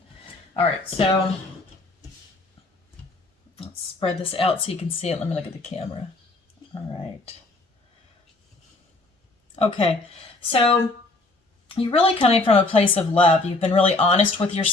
All right, so let's spread this out so you can see it. Let me look at the camera. All right. Okay, so you're really coming from a place of love. You've been really honest with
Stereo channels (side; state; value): right; quieter; 3.1 dB